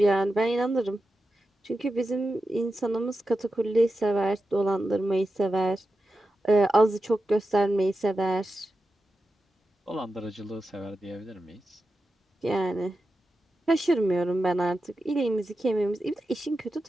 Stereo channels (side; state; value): both; normal; correlation 0.91